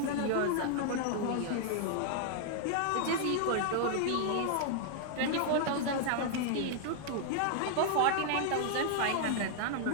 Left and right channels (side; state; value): both; different; correlation -0.01